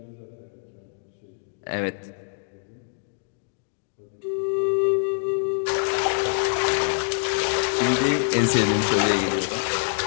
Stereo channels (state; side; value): silent; right; digital silence